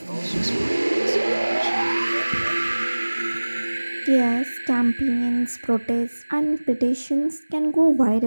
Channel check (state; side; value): inverted; both; correlation -1.00